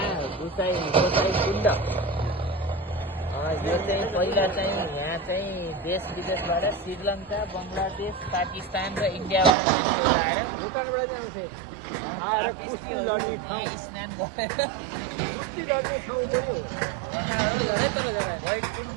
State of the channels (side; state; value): left; drops out; at 9.6 s